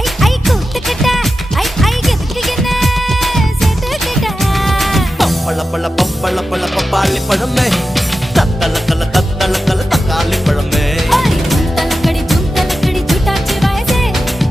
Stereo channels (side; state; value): both; normal; correlation 0.92